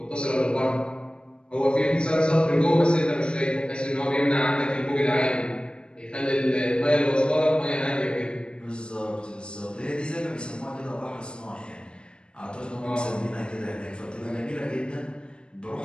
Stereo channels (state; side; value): late; right; 0.054 ms